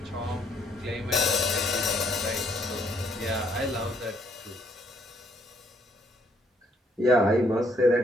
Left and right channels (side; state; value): both; normal; correlation 0.69